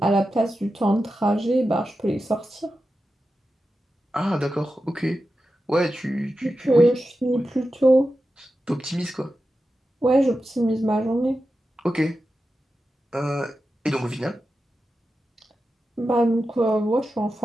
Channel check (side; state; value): both; normal; correlation 0.91